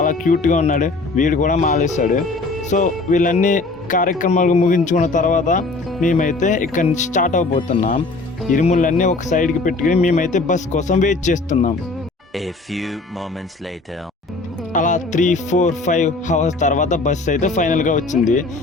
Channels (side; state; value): right; quieter; 3.4 dB